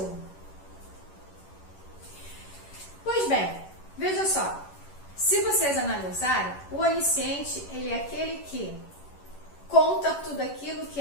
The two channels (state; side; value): late; right; 11 ms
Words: Pois bem, veja só, se vocês analisarem, o onisciente, ele é aquele que conta tudo aquilo que